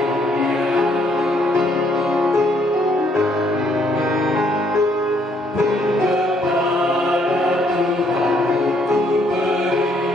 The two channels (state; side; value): normal; both; correlation 0.68